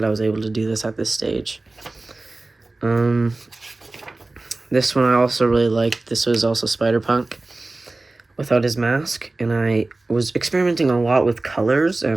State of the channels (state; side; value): quieter; left; 3.1 dB